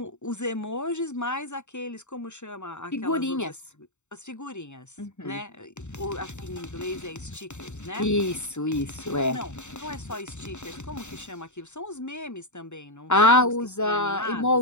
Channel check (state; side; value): late; right; 0.83 ms